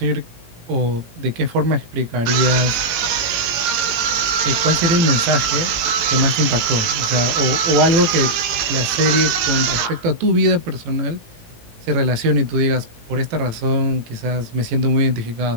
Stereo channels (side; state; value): left; late; 18 ms